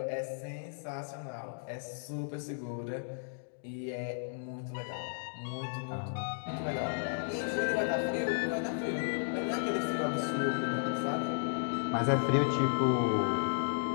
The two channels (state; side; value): silent; right; digital silence